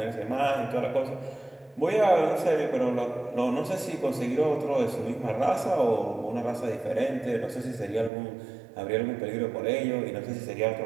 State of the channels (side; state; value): left; drops out; at 8.1 s